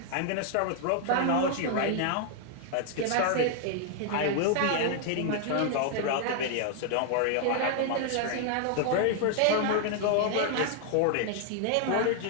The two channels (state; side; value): different; both; correlation 0.00